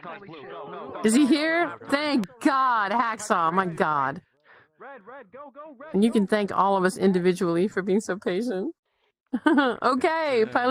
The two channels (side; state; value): both; identical; correlation 1.00